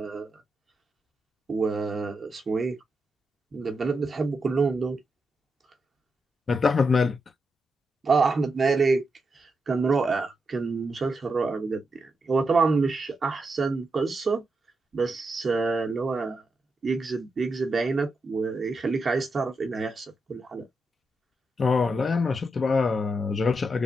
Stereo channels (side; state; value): both; normal; correlation 0.85